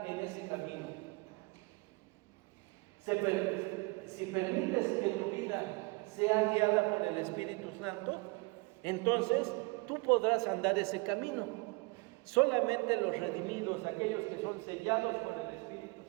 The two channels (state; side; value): quieter; left; 27.4 dB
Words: en ese camino. Si permites que tu vida sea guiada por el Espíritu Santo, entonces tú podrás andar ese camino. Solamente los redimidos, aquellos que son sellados por el